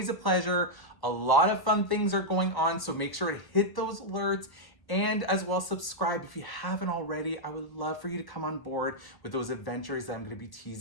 a pleasure. A lot of fun things are going on, so make sure to hit those alerts And as well, subscribe if you haven't already. I would love for you to come on board with those adventures that I'm going to be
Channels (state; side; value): late; right; 1.3 ms